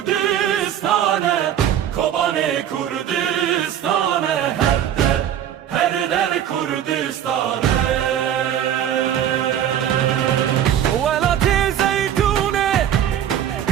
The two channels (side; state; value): left; quieter; 10.3 dB